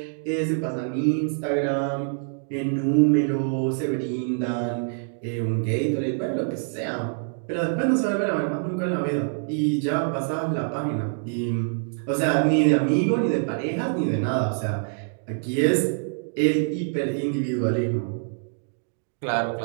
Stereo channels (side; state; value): left; silent; digital silence